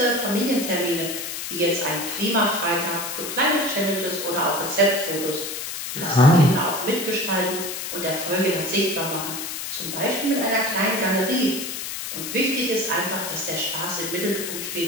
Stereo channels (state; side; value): noise; left; hiss, 6 dB below the sound